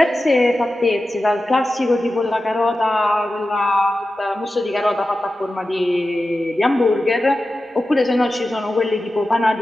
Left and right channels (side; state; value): both; normal; correlation 0.93